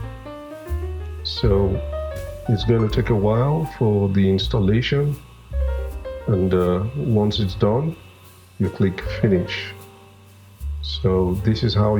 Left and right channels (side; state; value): both; identical; correlation 1.00